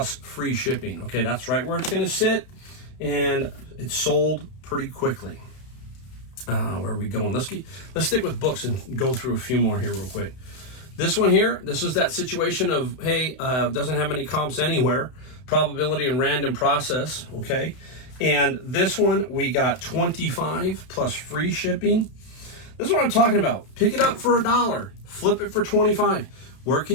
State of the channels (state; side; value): late; right; 32 ms